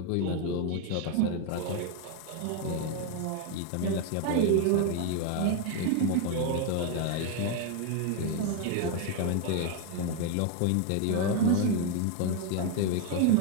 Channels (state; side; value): different; both; correlation 0.01